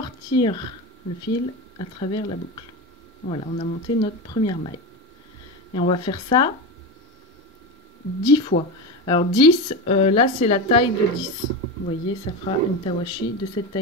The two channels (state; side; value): normal; both; correlation 0.20